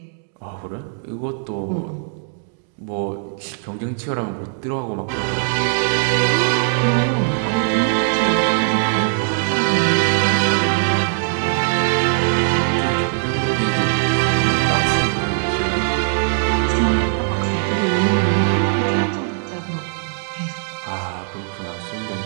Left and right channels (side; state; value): left; silent; digital silence